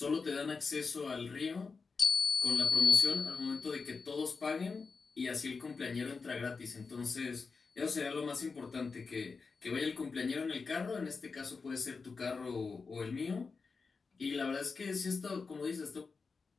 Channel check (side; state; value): right; quieter; 4.7 dB